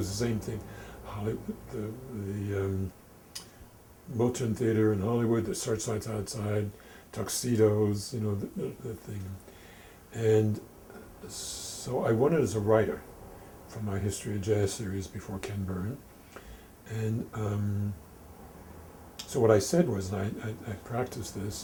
the same thing. The Moulton Theater in Hollywood, the Searchlights Outside, Tuxedos, the thing. And so I won it as a writer for my History of Jazz series before Ken Byrne. And so what I said was, and I practiced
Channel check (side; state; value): both; identical; correlation 1.00